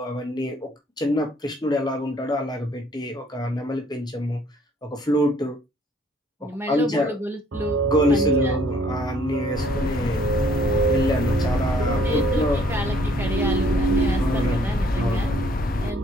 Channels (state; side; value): normal; both; correlation 0.62